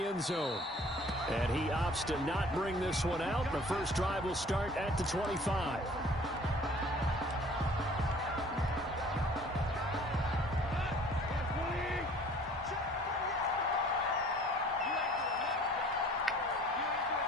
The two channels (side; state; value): both; normal; correlation 0.51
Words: end zone. And he opts to not bring this one out. The first drive will start at the 25.